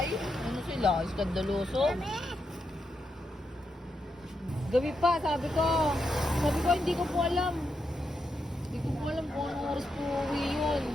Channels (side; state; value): both; normal; correlation 0.84